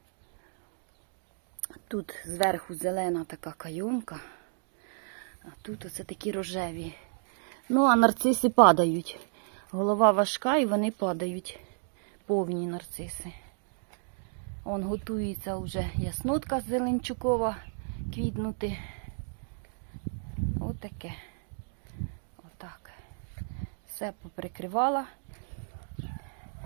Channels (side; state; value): left; silent; digital silence